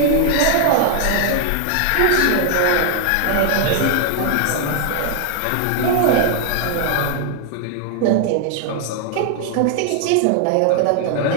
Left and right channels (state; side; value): different; both; correlation 0.00